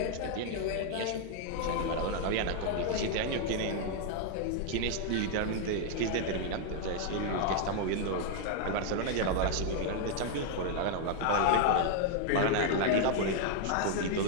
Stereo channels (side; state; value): both; different; correlation 0.00